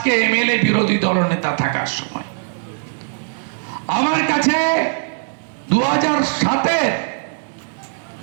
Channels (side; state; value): left; silent; digital silence